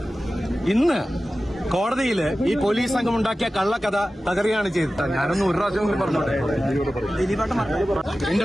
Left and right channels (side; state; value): both; normal; correlation 0.95